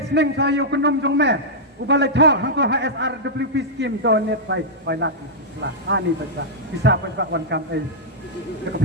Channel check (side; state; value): both; normal; correlation -0.08